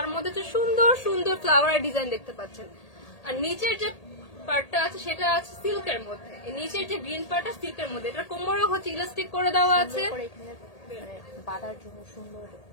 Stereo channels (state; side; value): late; right; 1.8 ms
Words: মধ্যে হচ্ছে সুন্দর সুন্দর ফ্লাওয়ারের ডিজাইন দেখতে পাচ্ছেন। আর নিচের যে পার্টটা আছে সেটা আছে সিল্কের মধ্যে, এই নিচের যে গ্রিন পার্টটা সিল্কের মধ্যে। এটা কোমরও হচ্ছে ইলাস্টিক করে দেওয়া আছে, করে এখানে মানে বাঁধার জন্য সুন্দর